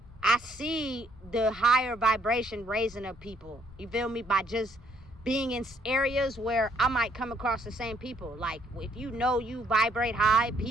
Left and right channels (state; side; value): noise; left; rumble, 22 dB below the sound